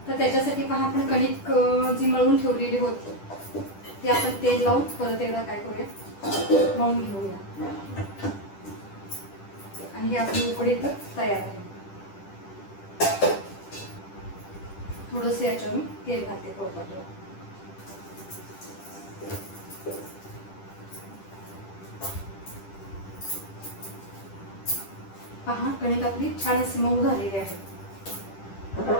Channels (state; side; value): late; right; 10 ms